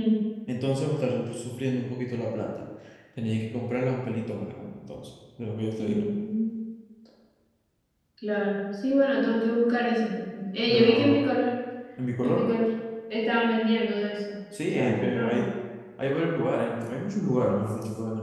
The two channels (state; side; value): identical; both; correlation 1.00